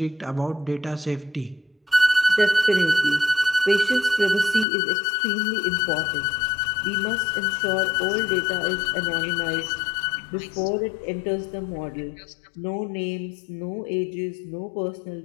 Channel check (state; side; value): drops out; right; at 4.7 s